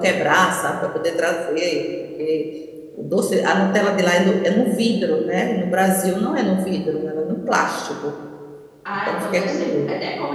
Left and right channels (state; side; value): identical; both; correlation 1.00